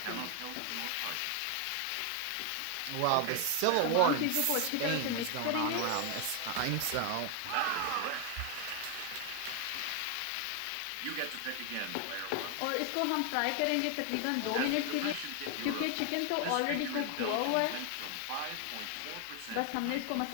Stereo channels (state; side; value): different; both; correlation 0.01